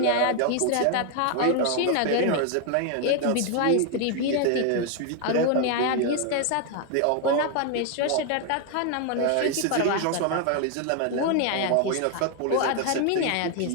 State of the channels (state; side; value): different; both; correlation 0.00